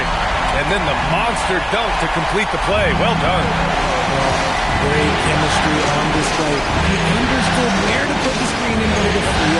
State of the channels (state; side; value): identical; both; correlation 1.00